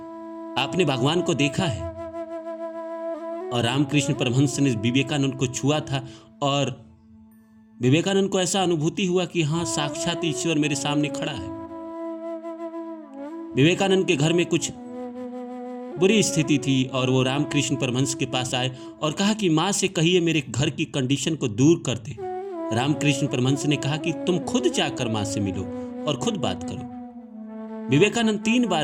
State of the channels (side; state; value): both; identical; correlation 1.00